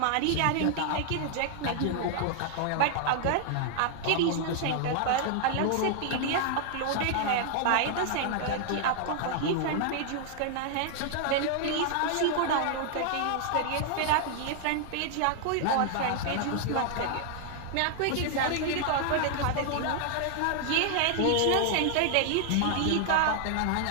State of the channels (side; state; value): both; different; correlation 0.00